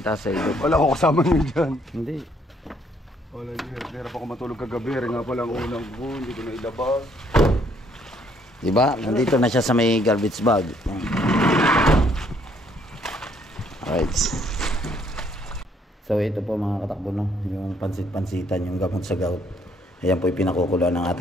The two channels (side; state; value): both; normal; correlation 0.67